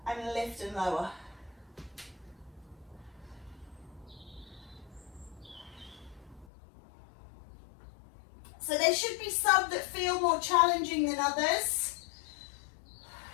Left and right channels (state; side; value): drops out; right; at 6.5 s